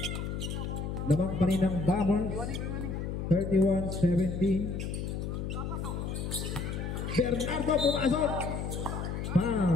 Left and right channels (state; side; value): noise; left; hum, 4 dB below the sound